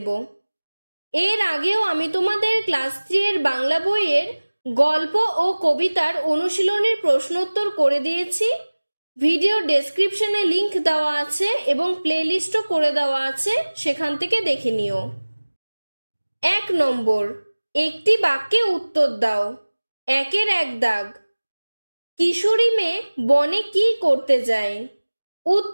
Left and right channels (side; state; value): both; inverted; correlation -1.00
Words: এর আগেও আমি তোমাদের ক্লাস 3 এর বাংলা বইয়ের গল্প ও কবিতার অনুশীলনীর প্রশ্নোত্তর করে দিয়েছি। ভিডিও ডেসক্রিপশনে লিংক দেওয়া আছে এবং প্লেলিস্টও করে দেওয়া আছে, সেখান থেকে দেখে নিও। 1 নম্বর, একটি বাক্যে উত্তর দাও। 1-এর 1 দাগ। কিশোরী মেয়ে বনে কি করতে যায়?